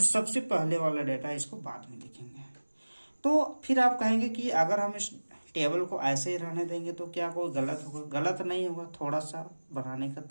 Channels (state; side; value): inverted; both; correlation -1.00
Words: सबसे पहले वाला डेटा है इसको बाद में लिखेंगे। तो फिर आप कहेंगे कि अगर हम इस टेबल को ऐसे ही रहने देंगे तो क्या कोई गलत होगा? गलत नहीं होगा, थोड़ा सा बनाने का